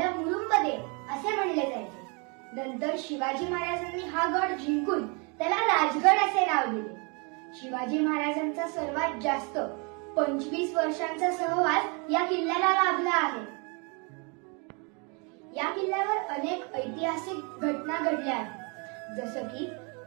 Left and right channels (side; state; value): left; quieter; 33.0 dB